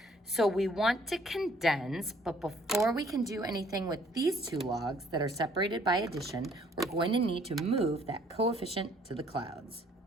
So we want to condense, but before we can do anything with these two logs that are separated by addition, we're going to need to move that coefficient to the clouds.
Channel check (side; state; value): both; normal; correlation 0.61